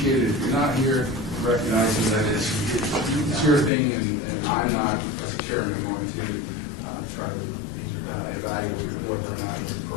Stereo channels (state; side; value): drops out; right; at 3.7 s